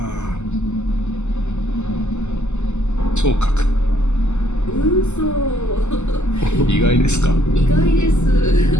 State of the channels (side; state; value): right; late; 0.83 ms